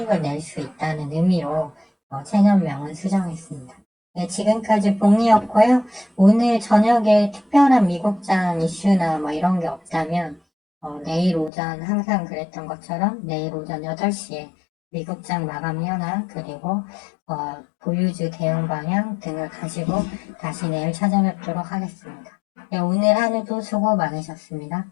낼 수 있다는 의미로 채널명은 수정했습니다. 네, 지금까지 봉이었고요. 오늘 저녁에 특별한 미국장 이슈나 뭐 이런 게 없다면 내일 오전 항상 그랬던 것처럼 내일 오전 8시에 미국장 마감 현황 그리고 보유주 대응 방향 등을 가지고 다시 내일 찾아뵙도록 하겠습니다. 네, 오늘 하루도 수고 많으셨습니다.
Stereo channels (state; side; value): drops out; right; at 11.5 s